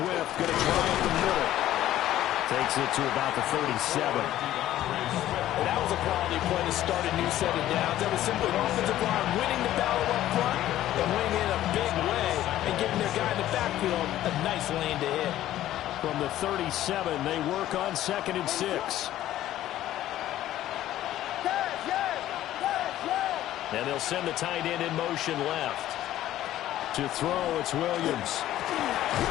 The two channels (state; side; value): quieter; right; 13.4 dB